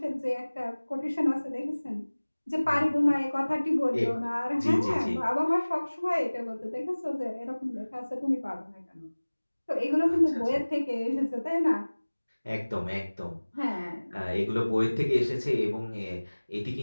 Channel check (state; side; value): inverted; both; correlation -1.00